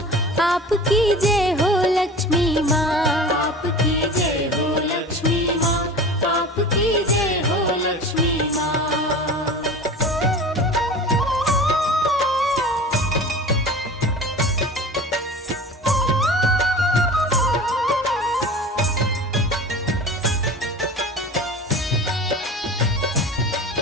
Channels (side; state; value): both; normal; correlation 0.36